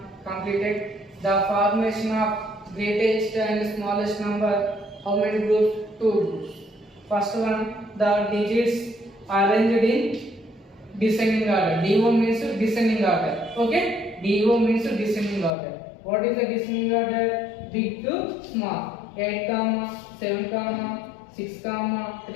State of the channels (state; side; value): drops out; right; at 15.6 s